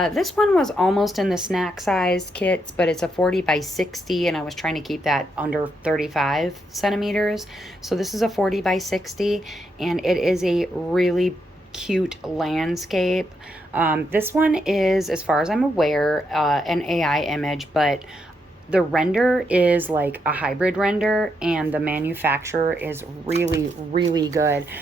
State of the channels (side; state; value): both; normal; correlation 0.79